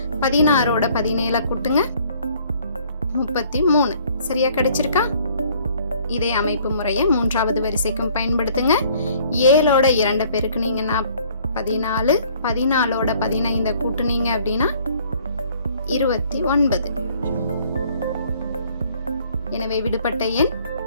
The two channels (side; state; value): both; inverted; correlation -0.59